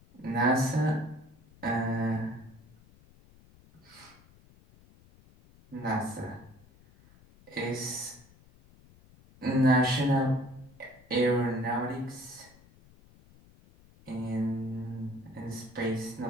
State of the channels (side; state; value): left; noise; rumble, 26 dB below the sound